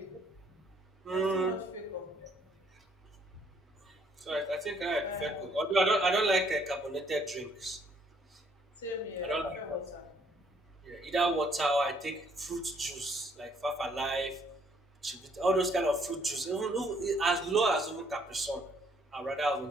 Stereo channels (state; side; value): normal; both; correlation 0.66